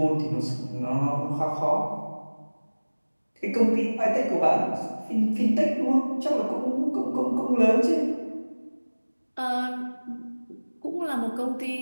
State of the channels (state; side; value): inverted; both; correlation -1.00